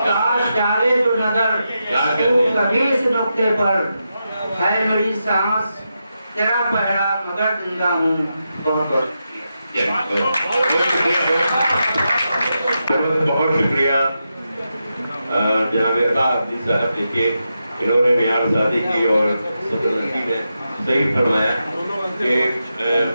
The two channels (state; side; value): inverted; both; correlation -0.87